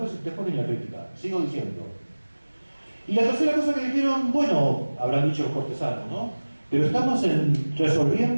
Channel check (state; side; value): inverted; both; correlation -1.00